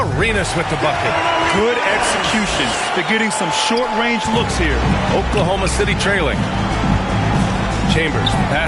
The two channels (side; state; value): both; identical; correlation 1.00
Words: with the bucket. Good execution. They're getting some short-range looks here. Oklahoma City trailing. Chambers,